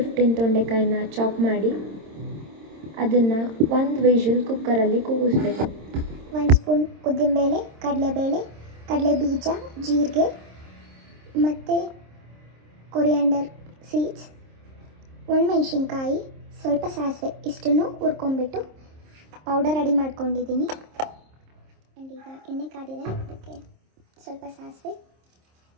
ತೊಂಡೆಕಾಯಿನ chop ಮಾಡಿ ಅದನ್ನು ಒಂದು ವಿಷಲ್ ಕುಕ್ಕರಲ್ಲಿ ಕೂಗಿಸ್ಬೇಕು. 1 ಸ್ಪೂನ್ ಉದ್ದಿನಬೇಳೆ, ಕಡಲೆಬೇಳೆ, ಕಡಲೆ ಬೀಜ, ಜೀರಿಗೆ ಮತ್ತು ಕೊರಿಯಾಂಡರ್ ಸೀಡ್ಸ್, ಒಣಮೆಣಸಿನ್ಕಾಯಿ, ಸ್ವಲ್ಪ ಸಾಸಿವೆ ಇಷ್ಟನ್ನು ಹುರ್ಕೊಂಡ್ಬಿಟ್ಟು ಪೌಡರ್ ರೆಡಿ ಮಾಡ್ಕೊಂಡಿದ್ದೀನಿ. ಆ್ಯಂಡ್ ಈಗ ಎಣ್ಣೆ ಕಾದಿದೆ, ಅದಕ್ಕೆ ಸ್ವಲ್ಪ ಸಾಸಿವೆ,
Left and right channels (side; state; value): left; late; 26 ms